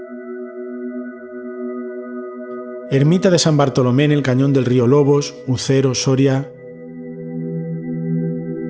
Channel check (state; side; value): identical; both; correlation 1.00